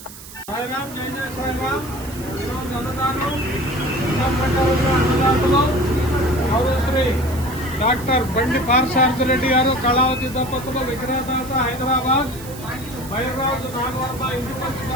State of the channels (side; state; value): right; noise; hiss, 16 dB below the sound